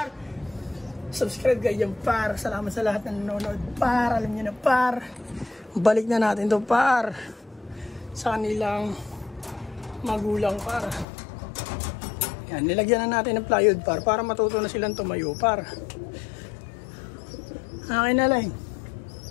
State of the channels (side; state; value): right; drops out; at 11.1 s